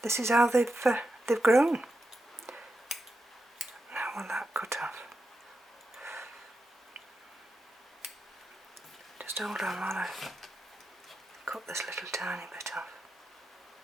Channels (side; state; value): both; normal; correlation 0.87